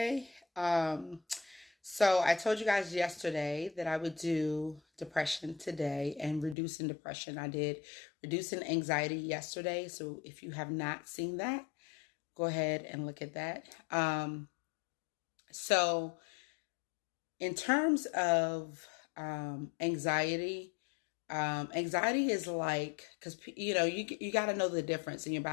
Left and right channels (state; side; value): drops out; right; at 6.6 s